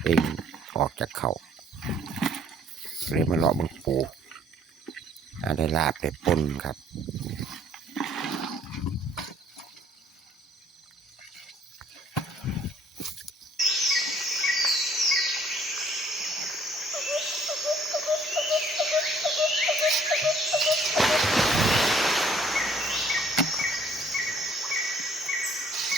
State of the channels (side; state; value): both; normal; correlation 0.61